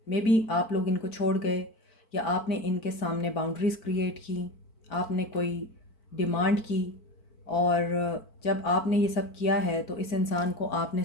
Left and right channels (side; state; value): right; late; 4.5 ms